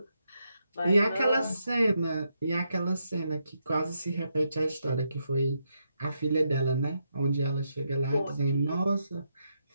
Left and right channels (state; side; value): inverted; both; correlation -0.81